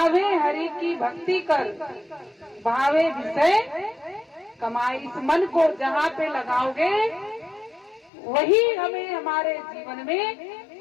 हरि की भक्ति कर, भावे विषय कमाए। इस मन को जहाँ पे लगाओगे वही हमें हमारे जीवन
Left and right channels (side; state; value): right; drops out; at 8.1 s